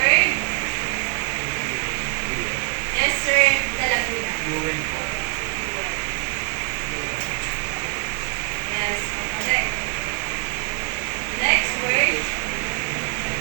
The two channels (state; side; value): quieter; left; 35.8 dB